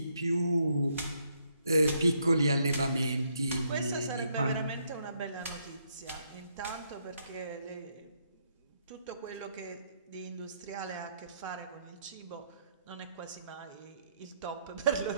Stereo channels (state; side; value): inverted; both; correlation -0.74